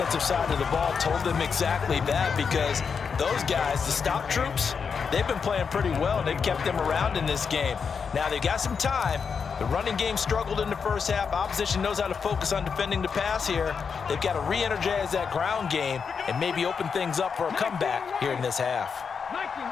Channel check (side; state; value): right; quieter; 6.0 dB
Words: side of the ball told them exactly that, because those guys, the stop troops, they've been playing pretty well, and they've kept them around in this game. Now they've got some time. The running game struggled in the first half. Opposition knows how to focus on defending the pass here. They've got to re-energize that ground game and maybe open things up for a comeback here in this half.